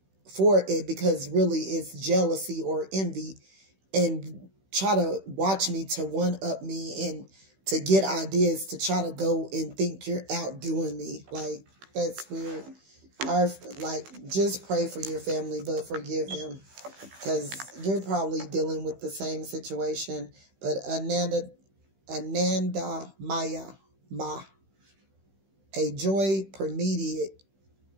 for it because really it's jealousy or envy, and try to watch me to one-up me and to get ideas to try to go and think you're outdoing me. Like, that's weird. Just pray for your family, but forgive them, because you're probably dealing with the same situation. But Ananda Maya Ma, a joy permeated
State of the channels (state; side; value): late; left; 16 ms